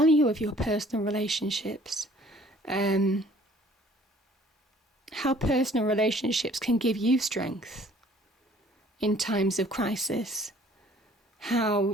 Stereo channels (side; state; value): both; normal; correlation 0.55